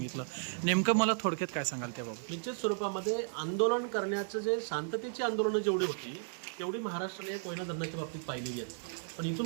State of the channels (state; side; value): silent; left; 55 dB below the other